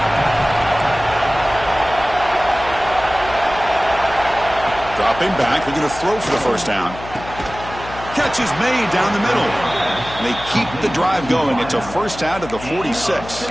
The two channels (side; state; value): left; noise; hum, 14 dB below the sound